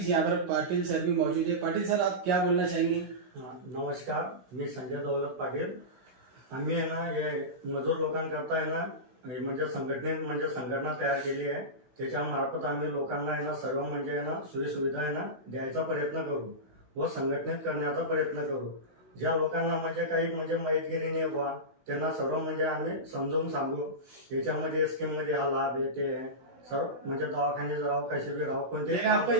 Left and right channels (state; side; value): late; left; 16 ms